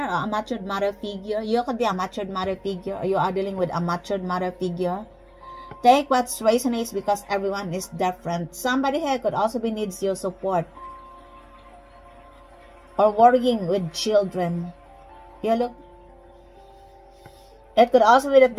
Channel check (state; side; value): identical; both; correlation 1.00